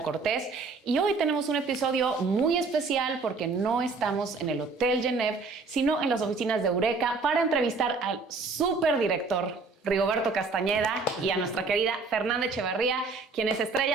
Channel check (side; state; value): left; quieter; 4.1 dB